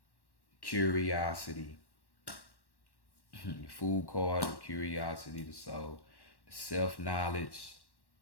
curiosity, the Fool card of curiosity, the soul, the self-knowledge,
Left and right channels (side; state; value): right; late; 1.1 ms